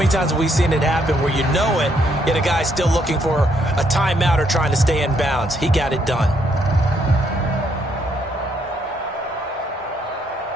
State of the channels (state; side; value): normal; both; correlation 0.72